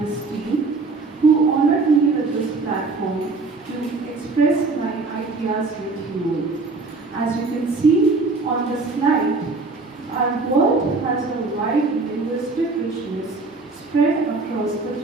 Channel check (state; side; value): quieter; left; 3.8 dB